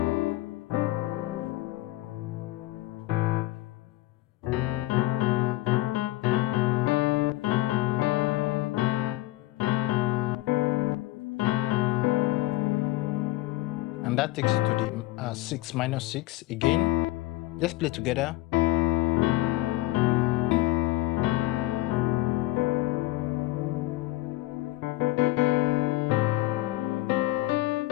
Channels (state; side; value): quieter; right; 18.2 dB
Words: And that takes you to the 6 minus 6 again. Let's play together.